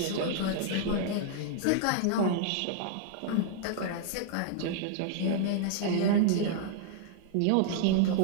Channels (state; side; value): different; both; correlation -0.01